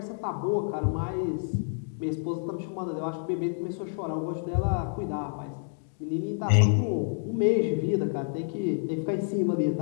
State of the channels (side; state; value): right; silent; digital silence